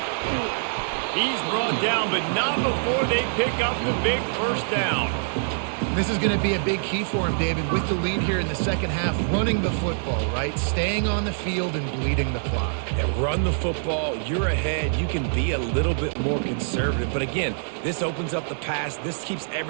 He's brought down, but not before they pick up the big first down. This is going to be a big key for him, David, with the lead here in the second half, running the football, right? Staying on the field and bleeding the clock. And run the football, you're ahead, you can be a little bit more conservative. But again, this opens up the pass. This keeps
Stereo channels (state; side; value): silent; left; 62 dB below the other